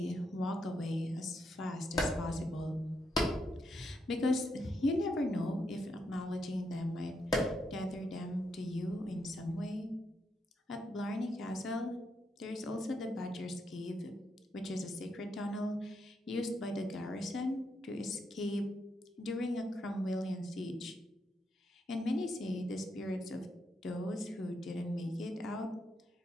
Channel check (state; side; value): normal; both; correlation 0.80